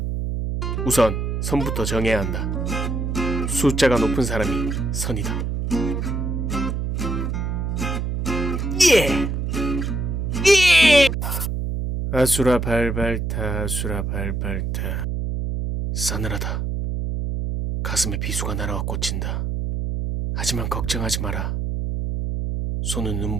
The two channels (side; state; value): right; noise; hum, 1 dB below the sound